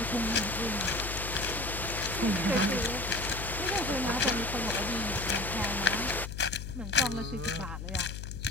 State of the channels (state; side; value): noise; left; hum, 7 dB below the sound